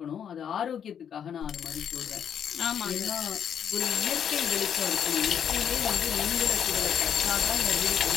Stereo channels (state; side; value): quieter; right; 8.4 dB